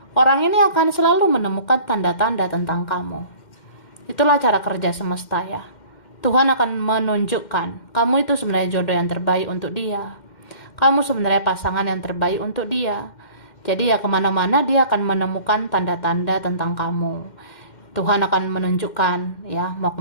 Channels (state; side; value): late; right; 2.1 ms